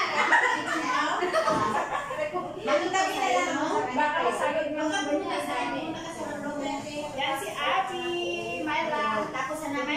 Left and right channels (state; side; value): identical; both; correlation 1.00